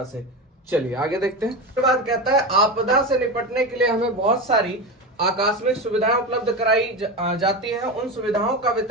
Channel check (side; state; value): both; normal; correlation 0.21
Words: से। चलिए आगे देखते हैं। उसके बाद कहता है आपदा से निपटने के लिए हमें बहुत सारी आकस्मिक सुविधाएं उपलब्ध कराई जाती हैं। उन सुविधाओं का